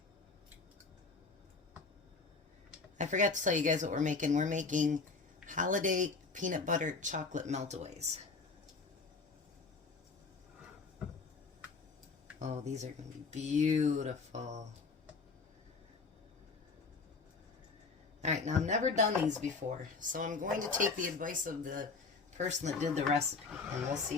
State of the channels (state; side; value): quieter; right; 4.4 dB